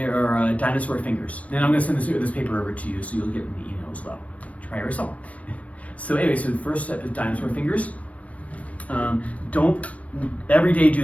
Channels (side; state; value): right; late; 0.067 ms